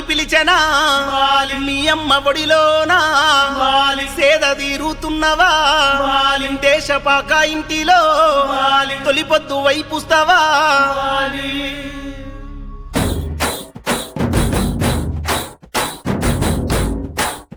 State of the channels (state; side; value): identical; both; correlation 1.00